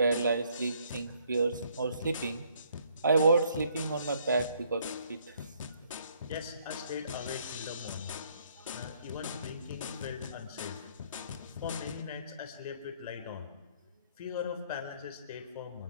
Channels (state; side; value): inverted; both; correlation -0.66